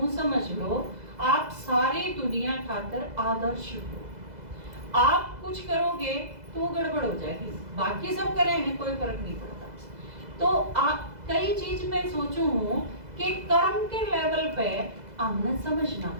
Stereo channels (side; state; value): left; late; 2.0 ms